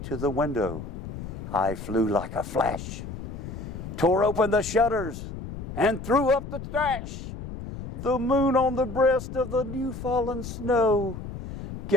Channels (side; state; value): left; noise; rumble, 9 dB below the sound